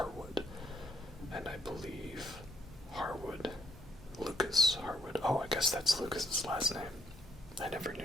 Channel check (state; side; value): normal; both; correlation 0.73